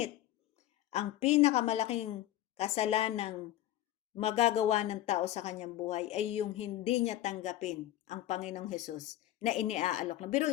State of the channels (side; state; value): right; quieter; 13.7 dB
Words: ang pinakamalaking kasalanang magagawa ng tao sa kanyang buhay ay yung hindi niya tanggapin ang Panginoong Hesus na iniaalok na.